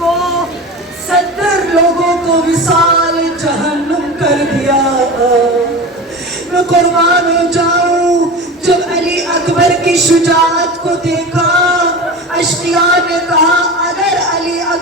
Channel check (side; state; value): both; normal; correlation 0.30